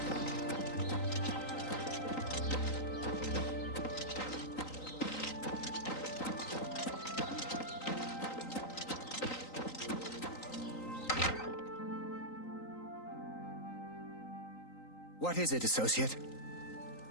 What is it, associate?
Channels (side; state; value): right; late; 3.9 ms